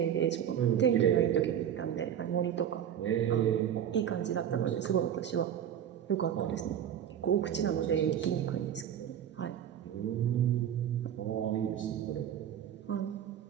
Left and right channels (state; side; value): quieter; left; 9.6 dB